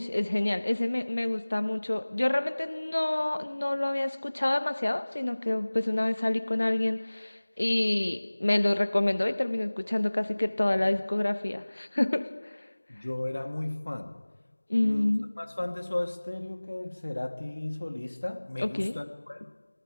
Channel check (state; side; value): inverted; both; correlation -1.00